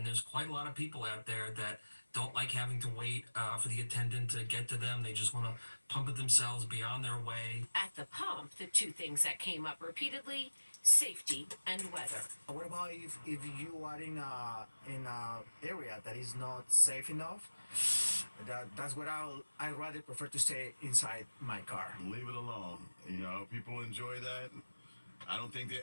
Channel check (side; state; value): both; inverted; correlation -1.00